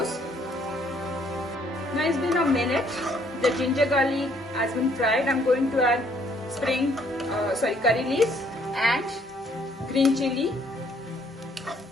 Now it's been a minute. The ginger garlic has been fried. I'm going to add curry leaves and green chili.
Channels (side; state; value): both; normal; correlation 0.65